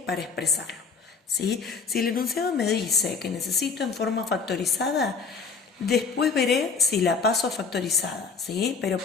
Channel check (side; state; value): right; quieter; 5.2 dB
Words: expresarlo. ¿Sí? Si el enunciado me dice que necesito en forma factorizada, después veré si la paso a factorizada, ¿sí? Pero